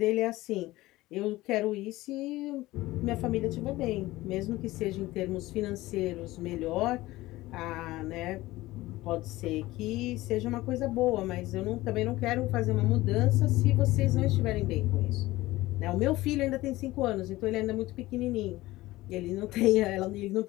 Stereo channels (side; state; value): right; quieter; 18.2 dB